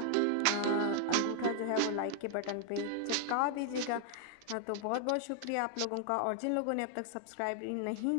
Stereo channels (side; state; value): both; different; correlation 0.00